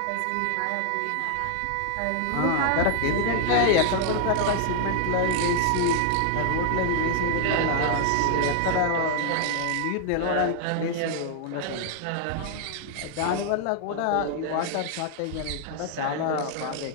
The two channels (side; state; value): both; different; correlation 0.00